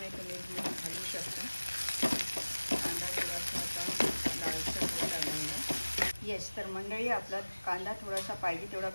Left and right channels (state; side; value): inverted; both; correlation -1.00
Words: तुम्ही मीठ घालू शकता. कांदा थोडासा आता लालसर होत आलेला. येस, तर मंडळी आपला कांदा थोडासा पाहिजे तेवढा